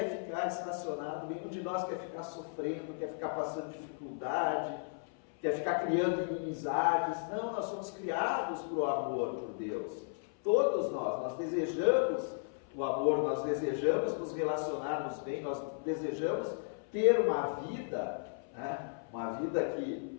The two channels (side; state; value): right; silent; 54 dB below the other